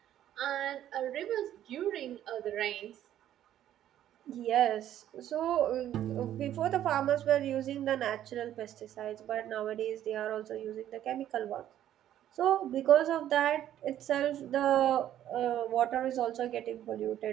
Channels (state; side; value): quieter; left; 11.6 dB